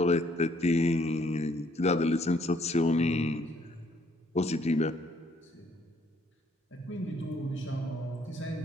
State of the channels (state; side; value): normal; both; correlation 0.66